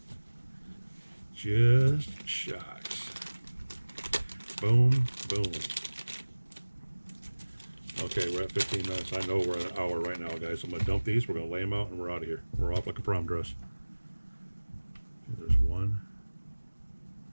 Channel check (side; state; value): both; inverted; correlation -1.00